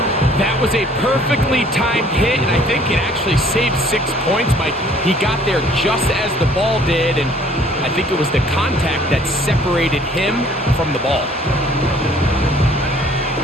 That was a perfectly timed hit, and I think it actually saved 6 points, Mike. He got there just as the ball did, and I think it was the contact that separated him from the ball.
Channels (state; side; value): normal; both; correlation 0.57